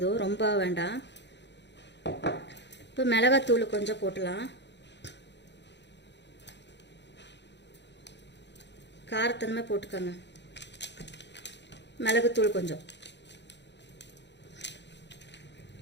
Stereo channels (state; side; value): late; right; 0.51 ms